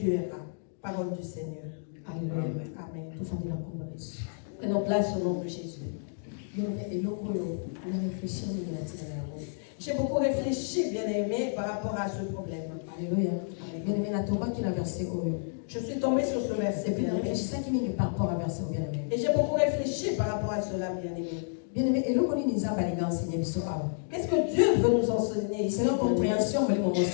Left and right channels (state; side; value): silent; right; digital silence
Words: Parole du Seigneur. Amen. Amen. Prenons place au nom de Jésus. J'ai beaucoup réfléchi, bien-aimé, par rapport à ce problème. Alléluia. Je suis tombée sur ce verset, bien-aimé. Et j'ai beaucoup réfléchi par rapport à cela, bien-aimé. Bien-aimé, qu'est-ce que Dieu veut nous enseigner ici?